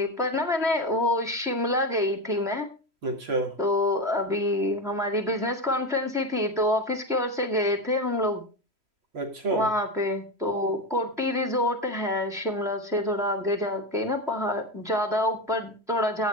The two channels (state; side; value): late; left; 3.1 ms